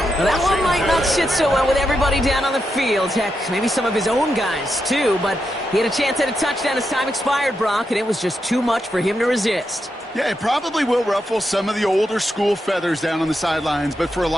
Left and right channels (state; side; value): normal; both; correlation 0.85